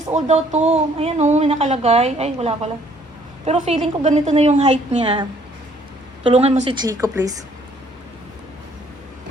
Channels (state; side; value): normal; both; correlation 0.62